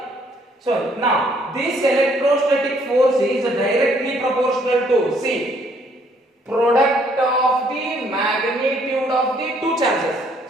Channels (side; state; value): both; normal; correlation 0.65